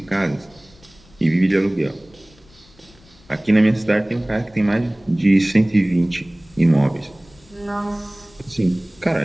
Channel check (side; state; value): left; noise; rumble, 28 dB below the sound